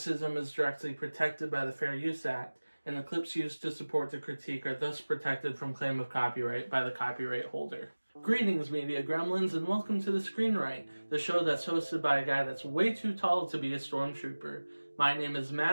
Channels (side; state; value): both; inverted; correlation -1.00